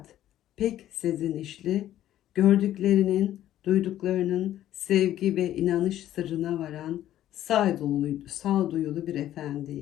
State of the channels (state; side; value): quieter; right; 12.6 dB